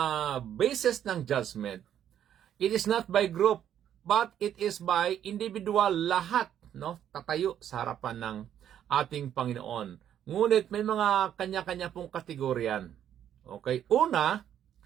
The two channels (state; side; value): quieter; left; 10.1 dB